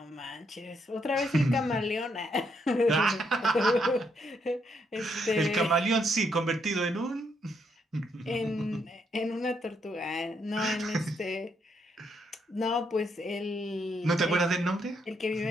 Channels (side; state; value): both; normal; correlation 0.76